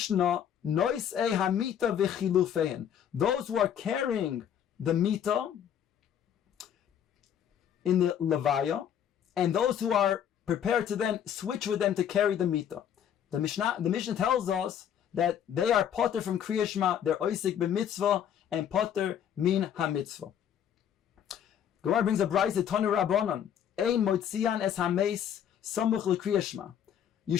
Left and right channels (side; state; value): right; quieter; 9.3 dB